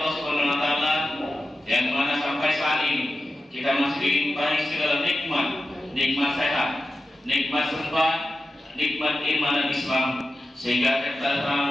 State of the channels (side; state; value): both; normal; correlation 0.93